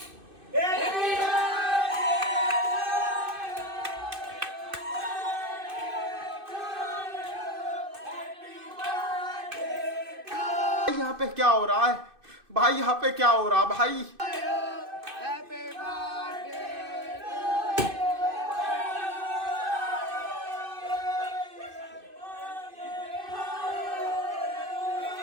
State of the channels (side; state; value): left; late; 2.6 ms